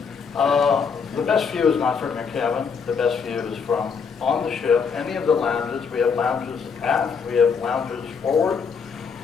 The best view is not from your cabin. The best view is from on the ship, any of the lounges. We have lounges aft. We have lounges forward.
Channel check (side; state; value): right; quieter; 5.9 dB